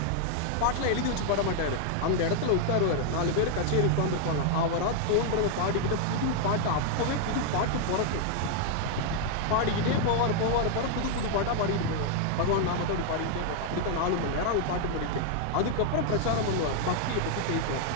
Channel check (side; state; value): both; different; correlation 0.00